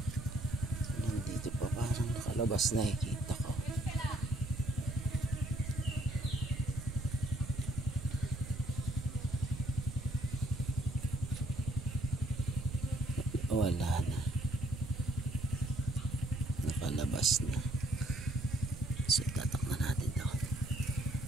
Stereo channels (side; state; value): right; noise; rumble, 10 dB below the sound